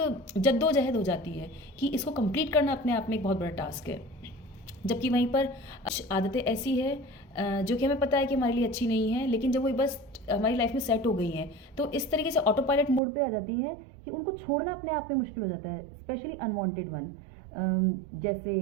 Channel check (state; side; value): drops out; left; at 13.0 s